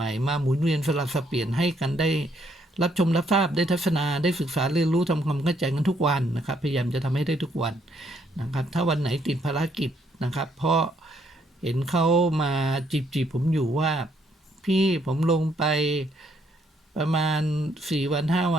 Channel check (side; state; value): both; normal; correlation 0.71